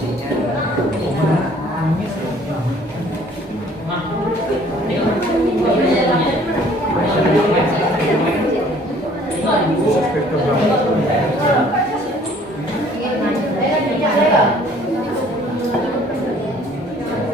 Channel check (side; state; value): both; normal; correlation 0.56